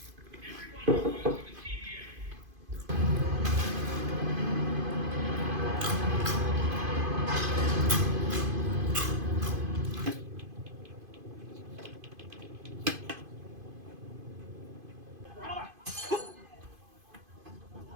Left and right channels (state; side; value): late; left; 2.5 ms